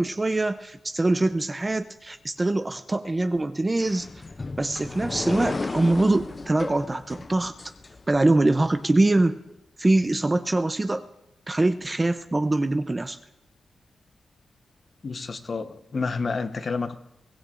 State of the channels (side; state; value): both; normal; correlation 0.98